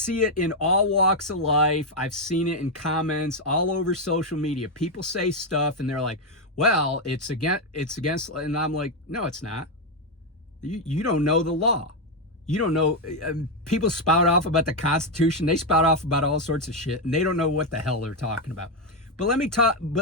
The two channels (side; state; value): both; normal; correlation 0.04